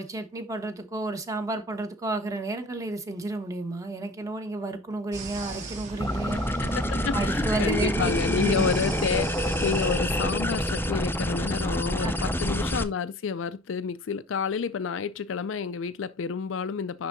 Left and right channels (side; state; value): both; normal; correlation 0.44